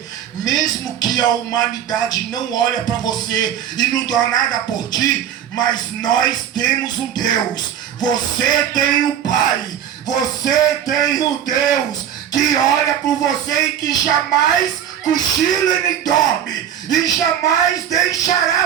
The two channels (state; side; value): quieter; left; 9.6 dB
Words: mesmo que a humanidade não olha para você e não dá nada por ti, mas nós temos um Deus. Você tem um Pai, você tem um Deus que olha por você e que jamais cochila e nem dorme, e jamais